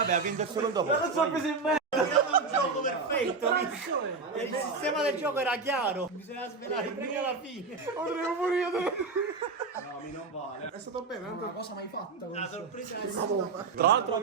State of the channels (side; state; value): left; quieter; 4.4 dB